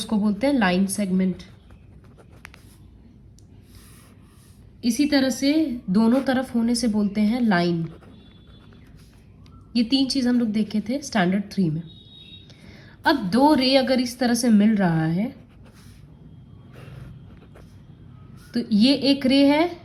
बोलते हैं लाइन सेगमेंट. इसी तरह से दोनों तरफ होने से बोलते हैं लाइन. ये 3 चीज़ हम लोग देखे थे स्टैंडर्ड 3 में. अब दो रे अगर इस तरह से मिल रहा है तो ये एक रे है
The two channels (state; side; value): identical; both; correlation 1.00